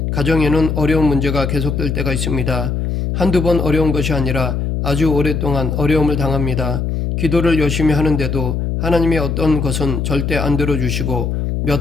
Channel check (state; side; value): noise; left; hum, 1 dB below the sound